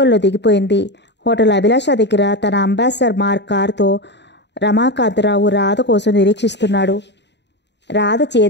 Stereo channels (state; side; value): late; right; 0.51 ms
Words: దిగిపోయింది. హోటల్ అభిలాష దగ్గర తన అంబాసిడర్ మార్క్ కారుతో రమాకాంతరావు రాధ కోసం నిరీక్షిస్తున్నాడు. రాధ